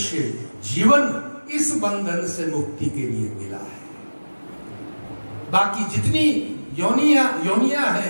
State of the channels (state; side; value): inverted; both; correlation -1.00